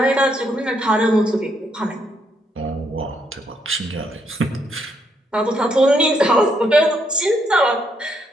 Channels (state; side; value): normal; both; correlation 0.75